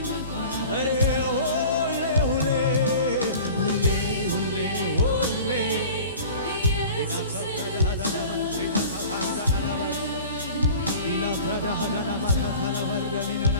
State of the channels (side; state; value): both; inverted; correlation -0.41